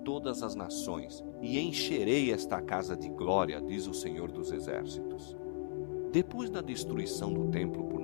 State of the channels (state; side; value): silent; right; 53 dB below the other